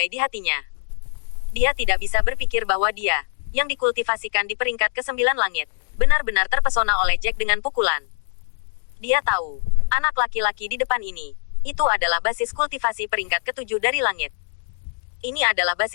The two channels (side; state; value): right; silent; digital silence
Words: di hatinya. Dia tidak bisa berpikir bahwa dia, yang dikultivasikan di peringkat ke-9 langit, benar-benar terpesona oleh Jack dengan pukulan. Dia tahu, anak laki-laki di depan ini, itu adalah basis kultivasi peringkat ke-7 dari langit. Ini adalah